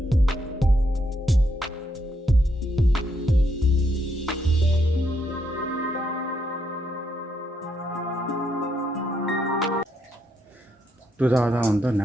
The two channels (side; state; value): both; normal; correlation 0.77